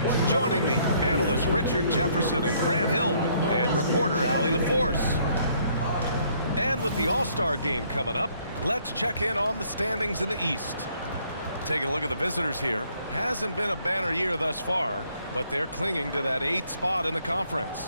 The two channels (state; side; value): inverted; both; correlation -0.66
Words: Joining me, analysts Richard Jefferson and Grant Hill, and reporter Allie LaForce. And with the All-Star game coming up, let's check in on the standings in the East. Taking a look at the visitors here. Hasn't been a banner year thus far, but they're clinging to that 8th spot in the